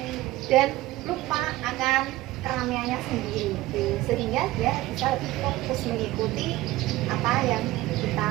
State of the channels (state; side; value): quieter; left; 17.6 dB